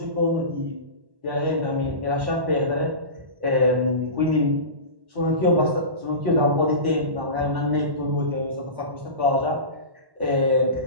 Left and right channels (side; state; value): left; late; 1.1 ms